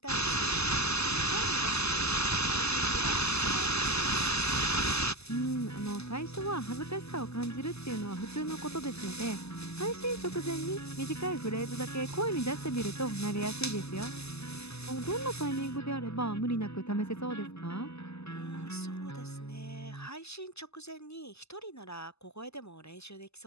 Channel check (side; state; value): right; late; 0.79 ms